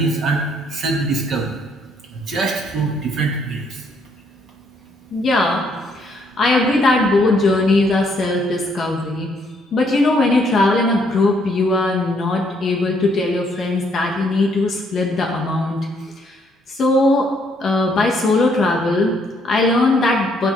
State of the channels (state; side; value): normal; both; correlation 0.70